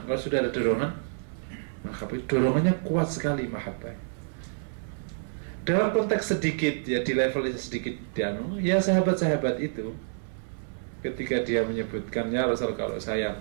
Kalau sudah ada dorongan mahabbah, dorongannya kuat sekali mahabbah. Dalam konteks sedikit ya, di level sedikit ya sahabat-sahabat itu ketika dia menyebutkannya Rasul, kalau saya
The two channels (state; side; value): silent; left; 59 dB below the other